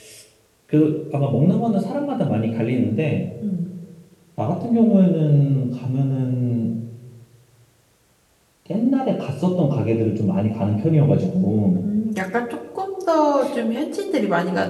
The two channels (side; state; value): both; identical; correlation 1.00